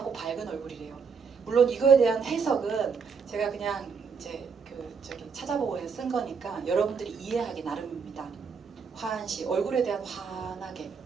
밝은 얼굴이래요. 물론 이거에 대한 해석은 제가 그냥 이제 찾아보고 쓴 거니까 여러분들이 이해하기 나름입니다. 화한시 얼굴에 대한 환하게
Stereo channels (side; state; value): left; quieter; 5.7 dB